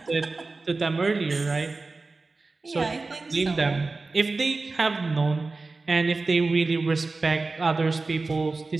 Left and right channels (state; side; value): quieter; left; 3.7 dB